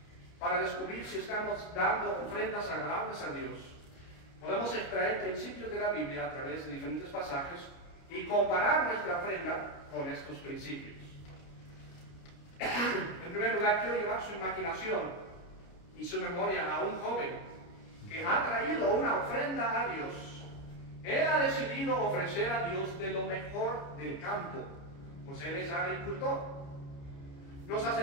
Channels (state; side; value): late; right; 29 ms